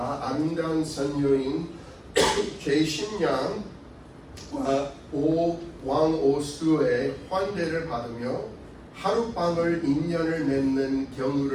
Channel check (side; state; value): both; identical; correlation 1.00